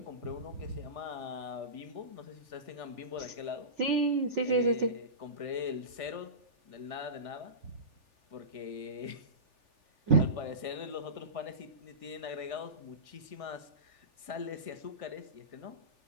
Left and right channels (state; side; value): late; left; 3.4 ms